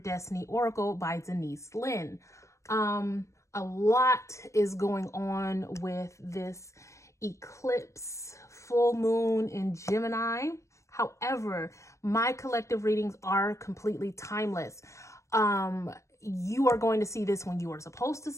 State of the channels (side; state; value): right; late; 0.15 ms